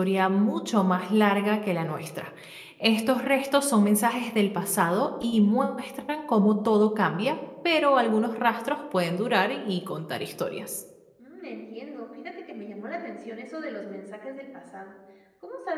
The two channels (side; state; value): both; identical; correlation 1.00